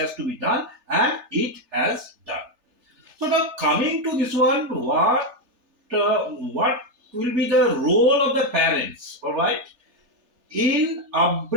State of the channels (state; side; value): late; left; 3.3 ms